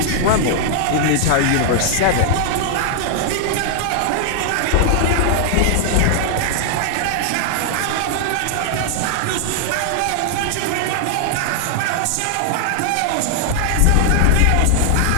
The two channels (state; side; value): different; both; correlation 0.00